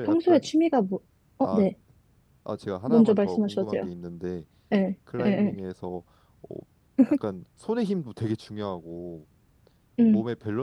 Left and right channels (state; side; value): identical; both; correlation 1.00